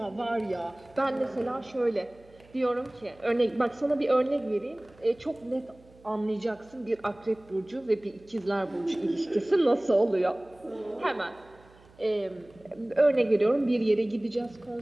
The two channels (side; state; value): right; noise; hum, 27 dB below the sound